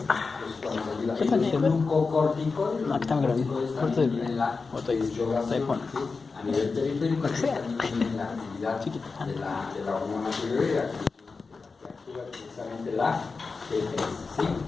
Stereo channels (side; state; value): right; quieter; 4.4 dB